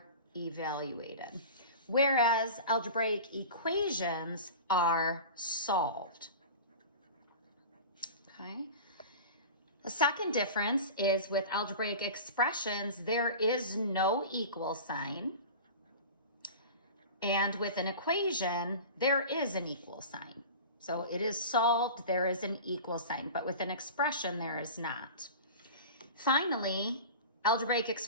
evaluated, whereas algebraic equations are solved. Okay. The second difference is with algebraic expressions, there is no equal sign. And with an equation, there is an equal sign. So it is solved, there is an equal sign, but with an expression, there is not. Finally, algebraic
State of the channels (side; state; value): both; inverted; correlation -0.34